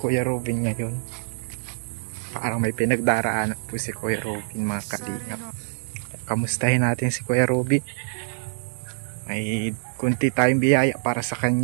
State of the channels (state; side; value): silent; left; 62 dB below the other